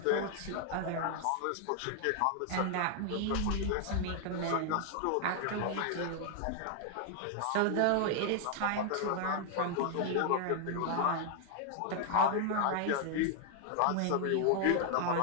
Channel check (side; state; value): both; different; correlation 0.00